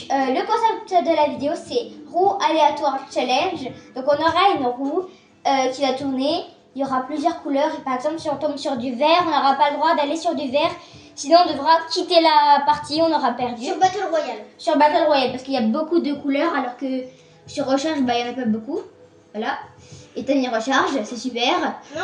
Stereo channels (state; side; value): identical; both; correlation 1.00